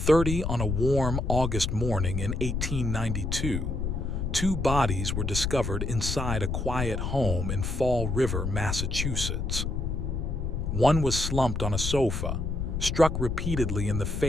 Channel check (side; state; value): left; noise; rumble, 2 dB below the sound